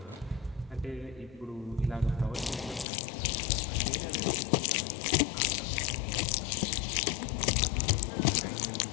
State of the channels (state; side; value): drops out; right; at 2.9 s